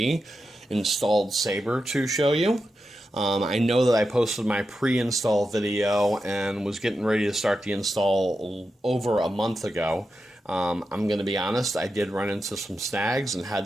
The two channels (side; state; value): both; normal; correlation 0.89